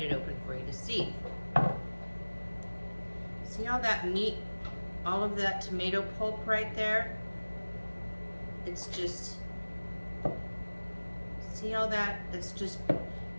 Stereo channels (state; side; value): inverted; both; correlation -1.00